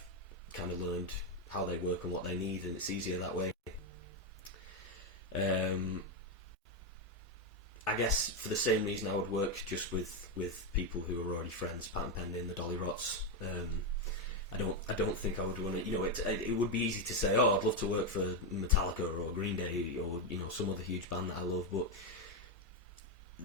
kind of learned how they work and what they need, and it's easier that way. I guess for the same reason I would work just with people who are already friends, Pat and Penny and the Dolly Rots. I don't think I would want to. It would be easy to say, oh, I'd love to work for Metallica or Green Day or some other huge band that I love, but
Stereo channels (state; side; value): normal; both; correlation 0.06